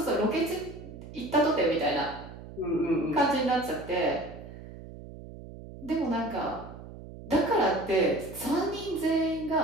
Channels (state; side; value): noise; right; hum, 14 dB below the sound